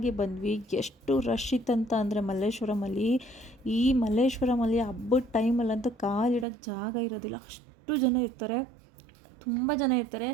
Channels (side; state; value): left; drops out; at 6.5 s